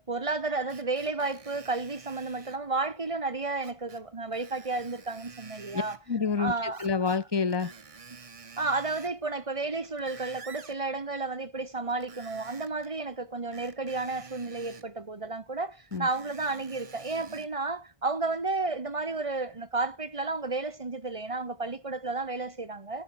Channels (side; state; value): left; late; 1.6 ms